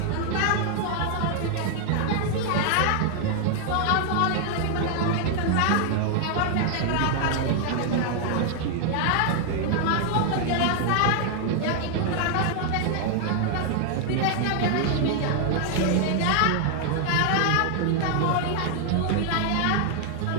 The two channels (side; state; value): both; different; correlation 0.00